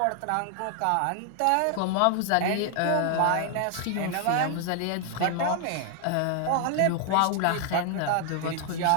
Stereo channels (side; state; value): both; different; correlation 0.00